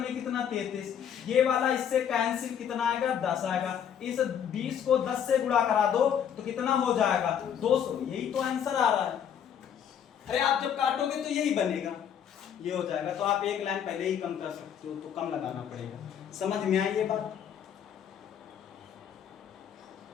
कितना 33। ये वाला इससे कैंसिल, कितना आएगा 10 आएगा। इस 20 को 10 से गुणा करा दो तो कितना हो जाएगा 200। यही तो आंसर आ रहा है। अरे आप जब काटोगे तो यही बनेगा, ये हो जाएगा। तो आप एक लाइन पहले ही कम कर सकते हो, तो कम लगाना पड़ेगा। समझ में आई ये बात?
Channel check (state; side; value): quieter; right; 8.7 dB